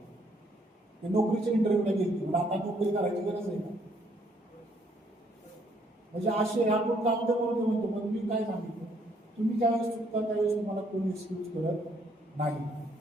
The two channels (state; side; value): normal; both; correlation 0.68